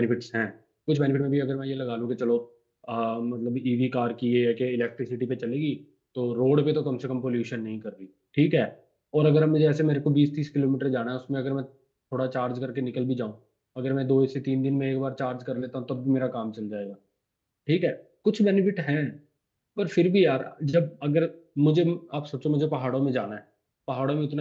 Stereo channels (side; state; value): both; identical; correlation 1.00